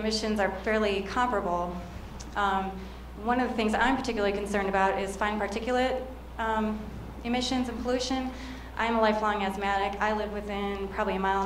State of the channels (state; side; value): identical; both; correlation 1.00